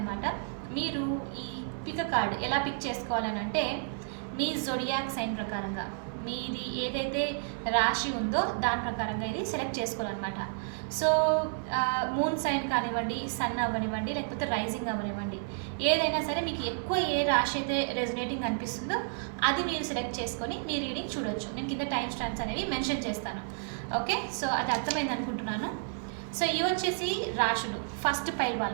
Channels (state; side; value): silent; left; 57 dB below the other